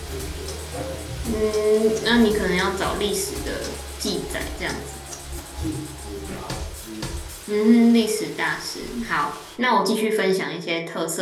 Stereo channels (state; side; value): identical; both; correlation 1.00